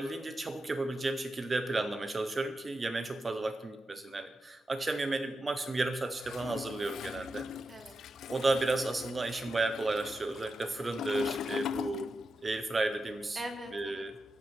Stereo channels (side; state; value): both; normal; correlation 0.89